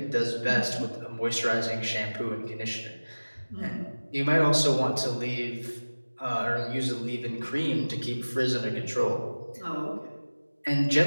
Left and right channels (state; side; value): inverted; both; correlation -1.00